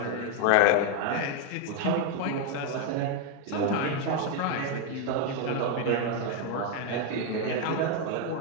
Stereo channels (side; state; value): both; different; correlation 0.01